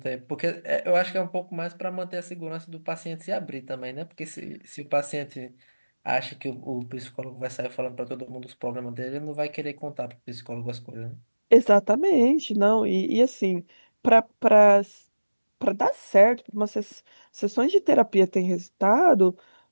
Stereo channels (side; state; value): both; inverted; correlation -1.00